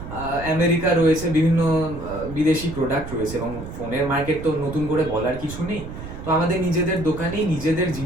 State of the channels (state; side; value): noise; right; rumble, 10 dB below the sound